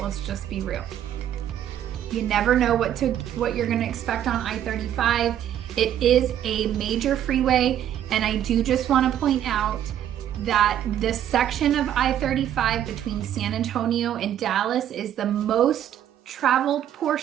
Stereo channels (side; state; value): left; quieter; 10.7 dB